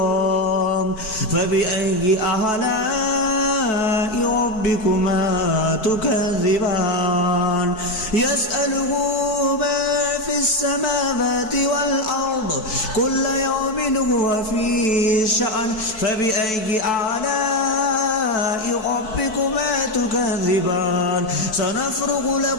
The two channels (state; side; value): late; right; 4.6 ms